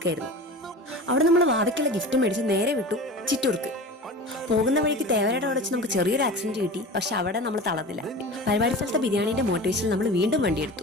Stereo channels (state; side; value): normal; both; correlation 0.34